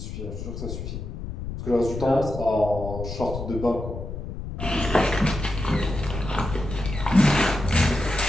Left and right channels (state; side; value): noise; left; rumble, 7 dB below the sound